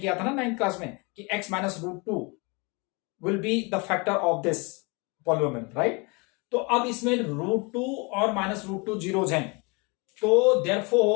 था ना 9th क्लास में कि x minus root 2 will be the factor of this polynomial, right. तो अब इसमें रूट 2 और माइनस रूट 2 जीरोज हैं, तो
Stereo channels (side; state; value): right; quieter; 29.1 dB